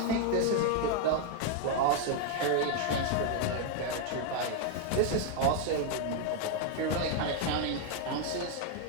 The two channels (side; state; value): both; different; correlation 0.00